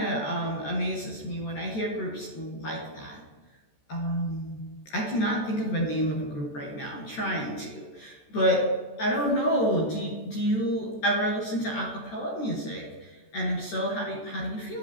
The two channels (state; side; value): late; right; 14 ms